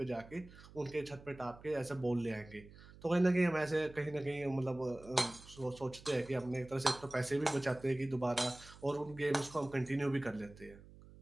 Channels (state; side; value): noise; right; hum, 20 dB below the sound